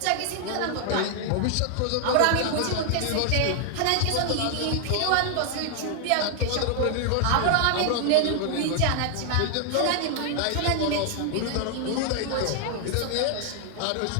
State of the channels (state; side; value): different; both; correlation 0.00